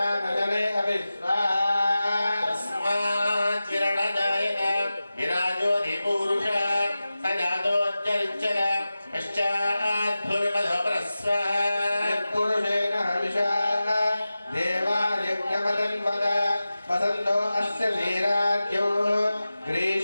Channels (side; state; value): both; inverted; correlation -0.95